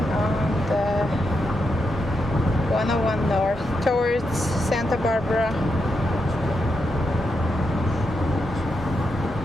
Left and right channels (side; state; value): both; normal; correlation 0.83